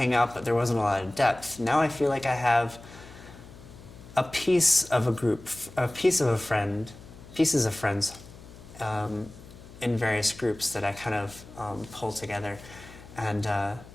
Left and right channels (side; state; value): left; noise; hum, 18 dB below the sound